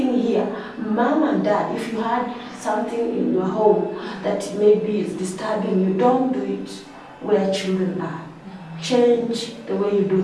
here, mom and dad, if you had something in your home that maybe is disturbing you, don't do it where children are. Change the way you do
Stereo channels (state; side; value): identical; both; correlation 1.00